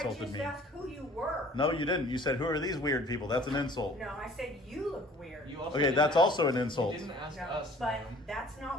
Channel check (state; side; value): normal; both; correlation 0.51